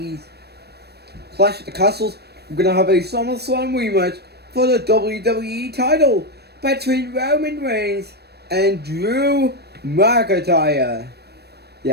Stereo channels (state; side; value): late; left; 0.47 ms